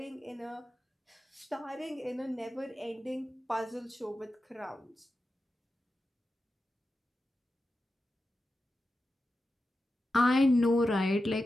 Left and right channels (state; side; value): normal; both; correlation 0.91